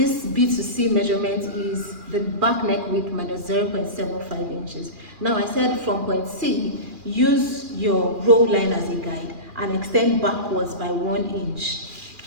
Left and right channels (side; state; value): left; late; 2.4 ms